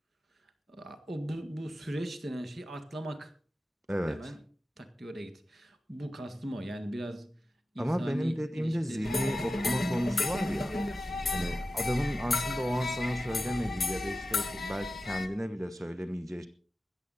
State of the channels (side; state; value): both; normal; correlation 0.93